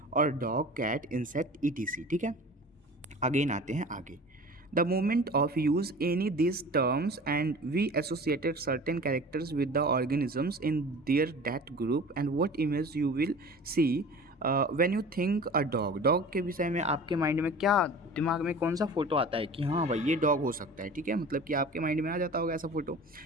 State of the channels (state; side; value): normal; both; correlation 0.40